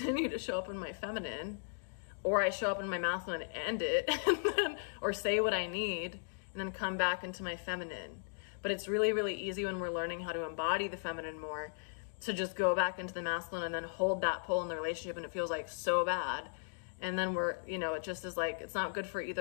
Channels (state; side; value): silent; right; digital silence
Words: to show up in my feminine? Or I show up in my masculine and end it, and then, or say what I need, and then come back into my feminine. But it's really, really easy when we're learning how to embody the feminine more to just go back into the masculine and then hold that pull in the relationship, and it feels like so bad. And then we're, you know, it just is like, it's not good for